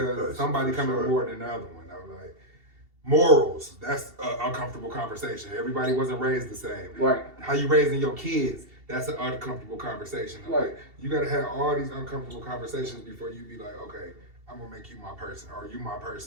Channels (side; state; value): left; late; 2.7 ms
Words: somebody coming more than the other one. Morals, that's an uncomfortable conversation. Everybody wasn't raised the same. Right. How you raising your kids, that's an uncomfortable conversation. Right. Like, you gotta have all these uncomfortable conversations before you be like, okay, I'm gonna make you my person, or you my